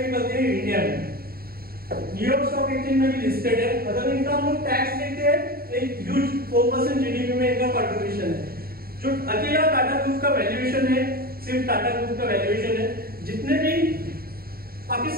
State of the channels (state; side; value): late; left; 0.44 ms